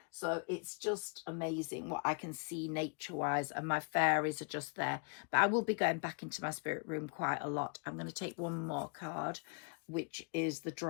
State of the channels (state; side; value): quieter; right; 37.8 dB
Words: so it's just amazing what I can see nature wise, and my fairies are just there. But I will be going back into my spirit room quite a lot. I'm going to take one more card, which is the